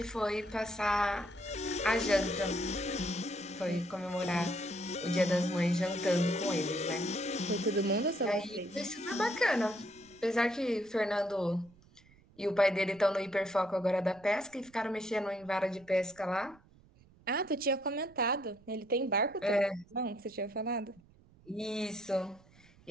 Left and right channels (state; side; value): noise; right; rumble, 27 dB below the sound